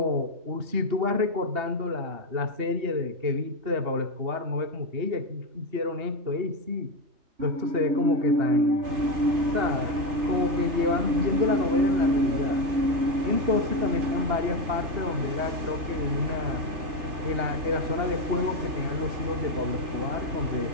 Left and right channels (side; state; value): left; late; 3.4 ms